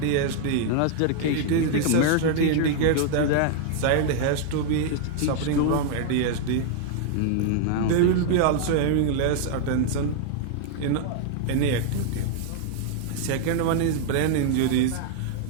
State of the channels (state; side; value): different; both; correlation 0.00